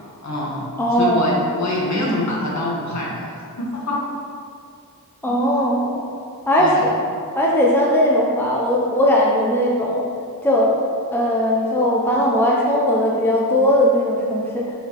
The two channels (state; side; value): normal; both; correlation 0.16